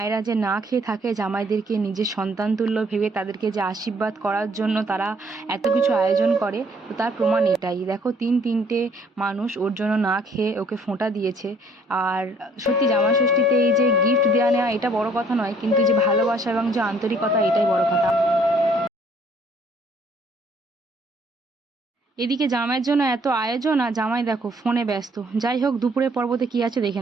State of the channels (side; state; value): both; normal; correlation 0.62